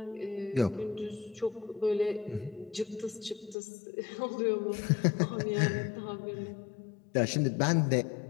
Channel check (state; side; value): drops out; right; at 3.6 s